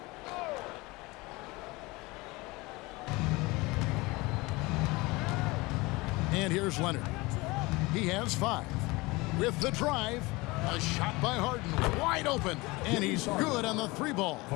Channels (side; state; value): right; quieter; 23.1 dB